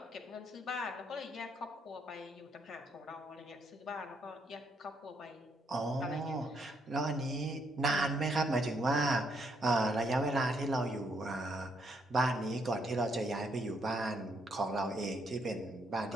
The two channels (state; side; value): normal; both; correlation 0.74